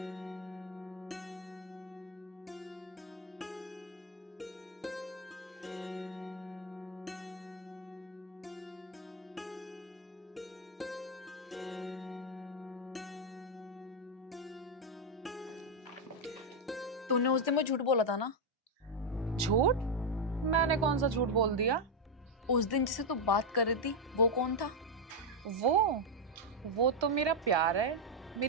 तूने उस दिन मुझे झूठ बोला था ना? झूठ? मैंने कौन सा झूठ बोल दिया? उस दिन जिसे तू बात कर रही थी वो कौन था? वो तो मेरा प्यार है,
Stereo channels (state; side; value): normal; both; correlation 0.02